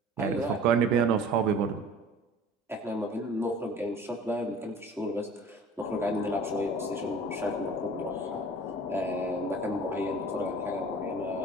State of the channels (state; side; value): normal; both; correlation 0.45